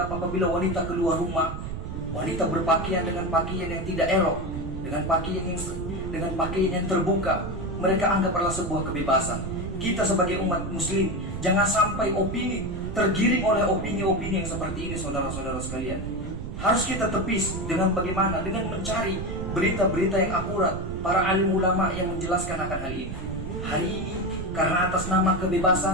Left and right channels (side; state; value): right; noise; rumble, 7 dB below the sound